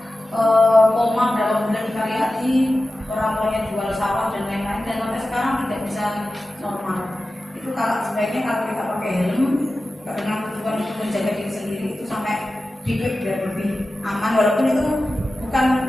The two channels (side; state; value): both; normal; correlation 0.94